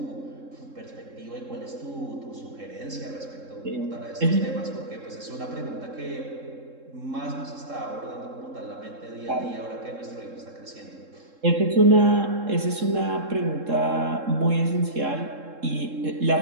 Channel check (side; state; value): left; late; 3.7 ms